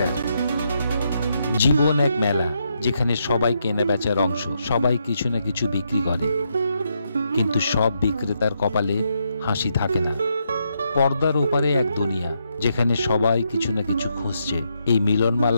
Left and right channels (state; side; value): inverted; both; correlation -0.79